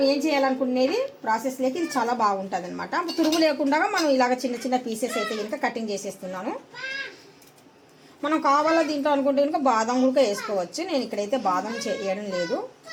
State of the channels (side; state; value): both; identical; correlation 1.00